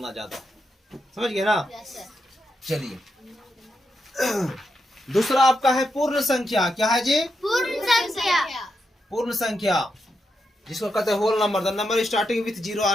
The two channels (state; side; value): normal; both; correlation 0.84